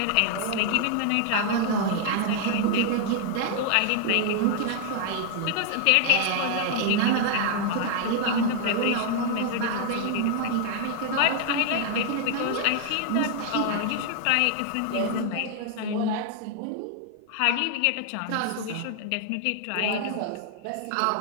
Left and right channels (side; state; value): both; different; correlation 0.00